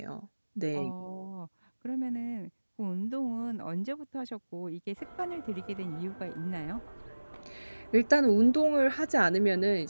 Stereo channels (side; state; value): both; inverted; correlation -1.00